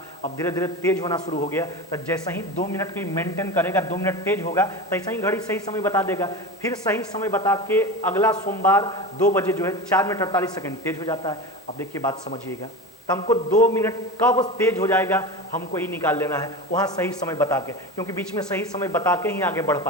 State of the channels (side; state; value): both; normal; correlation 0.27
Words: अब धीरे धीरे तेज होना शुरू हो गया, तो जैसे ही 2 मिनट की मेंटेन करेगा, 2 मिनट तेज होगा, तो ऐसा ही घड़ी सही समय बता देगा। फिर सही समय बता के अगला सोमवार 2 बजे जो है 4 मिनट 48 सेकंड तेज हो जाता है। अब देखिए बात समझिएगा, तो हमको 2 मिनट कब तेज हो जाएगा हमको ही निकाल लेना है, वहां सही समय बता के, क्योंकि बीच में सही समय बता के ही आगे बढ़